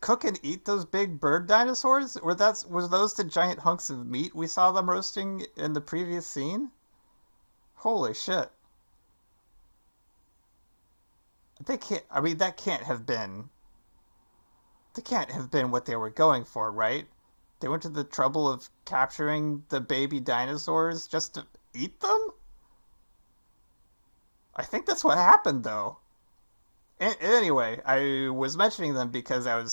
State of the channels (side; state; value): both; inverted; correlation -1.00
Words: cook and eat those big bird dinosaurs? Was those the giant hunks of meat we saw them roasting in the previous scene? Holy shit. They can't I mean that can't have been what they were going for, right? They went to the trouble of capturing the baby dinosaurs just to eat them? I think that's what happened though. Anyway, I was mentioning them because I